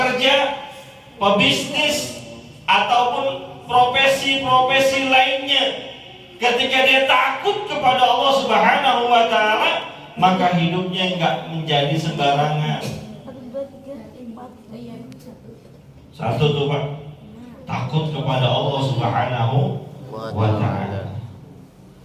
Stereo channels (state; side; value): identical; both; correlation 1.00